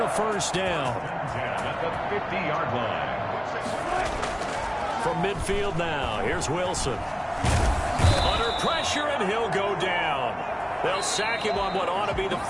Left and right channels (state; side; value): identical; both; correlation 1.00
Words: a first down. At the 50-yard line. From midfield now, here's Wilson. Under pressure, and he'll go down. They'll sack him on what ought to be the